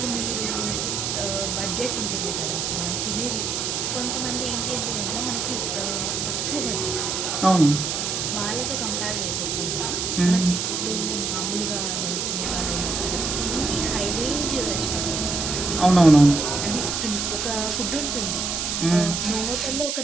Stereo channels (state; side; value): noise; right; hiss, 1 dB below the sound